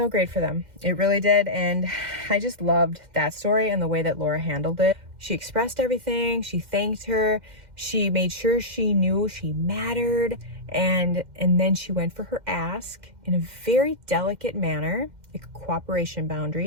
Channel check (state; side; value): late; left; 2.1 ms